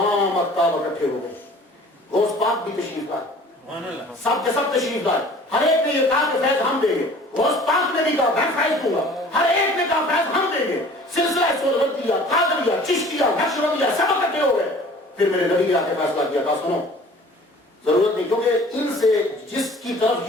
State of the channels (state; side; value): normal; both; correlation 0.48